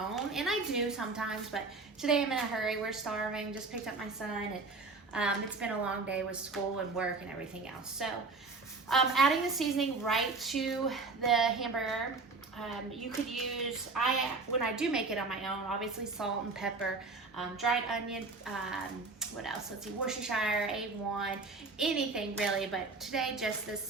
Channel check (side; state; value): left; quieter; 3.9 dB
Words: and I do sometimes, but today I'm in a hurry. We're starving, just picked up my son, and it's been a long day with school and work and everything else. So adding the seasoning right to the hamburger. You could use, when I do make it on my own, obviously salt and pepper, dried onion, what else? Let's see, Worcestershire, A1, anything really, but today just this